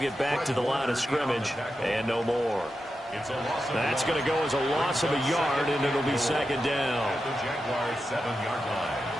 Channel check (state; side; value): normal; both; correlation 0.89